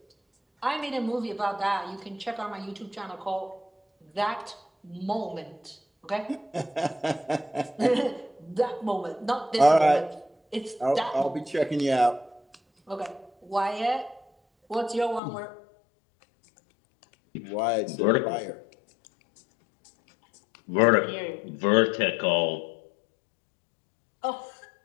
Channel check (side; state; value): right; drops out; at 15.2 s